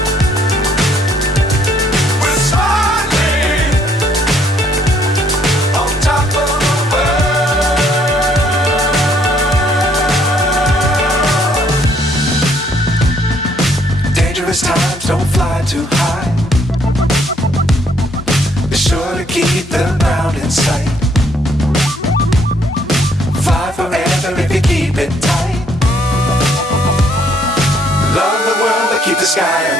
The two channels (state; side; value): normal; both; correlation 0.67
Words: Times don't fly too high. Be sure to keep the ground in sight. Fly forever if you keep it tight. Love the world but keep the sky on